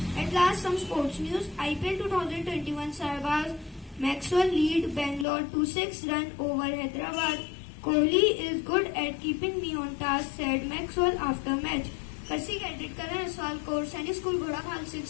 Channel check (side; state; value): right; drops out; at 5.2 s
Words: At last, some sports news. IPL 2021 Sarbaz Maxwell lead Bangalore to 6-run over Hyderabad. Kohli is good at keeping me on task, said Maxwell after match. Percy Cadet Karan Aswal Court, Sainik School, Godakhal 6